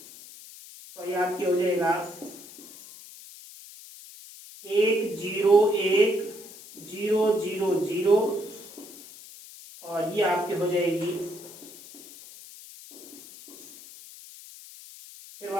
तो ये आपकी हो जाएगा 101,000 और ये आपकी हो जाएगी फिर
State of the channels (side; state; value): left; noise; hiss, 17 dB below the sound